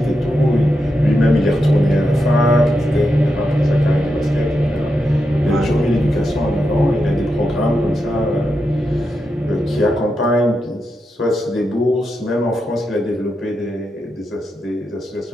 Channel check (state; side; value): normal; both; correlation 0.86